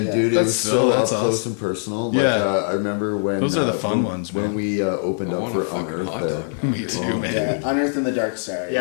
Yeah. dude, it That's was so- so up that's close awesome. and personal. Like, Yeah. I remember when Those are the fun when, ones, when man. we opened I up want for a fucking Unearthed. hot dog now. Me dude. too, man. Yeah, Unearthed in the Dark Side.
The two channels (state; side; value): silent; right; 64 dB below the other